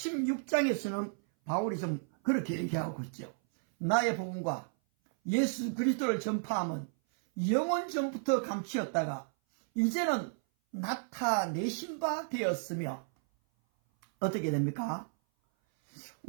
바울이 좀 그렇게 얘기하고 있죠. 나의 복음과 예수 그리스도를 전파함은 영원 전부터 감추었다가 이제는 나타내신 바 되었으며 어떻게 됩니까?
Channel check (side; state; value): left; silent; 56 dB below the other